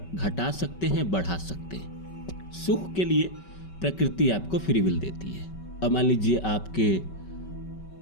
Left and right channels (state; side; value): late; right; 5.2 ms